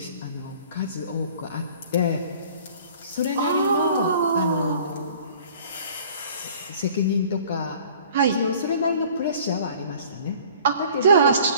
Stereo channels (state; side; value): inverted; both; correlation -0.50